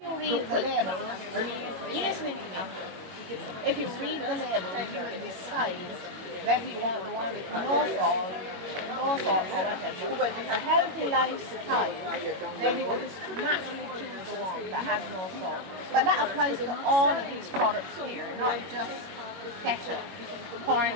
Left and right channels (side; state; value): left; late; 22 ms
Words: You read the label, you're listening to me. If you read the label, you will decide whether you want the one with no salt or whatever. If it's a healthy lifestyle, then you will just naturally choose the one that has no salt. But that applies to all of these products here, not just ketchup.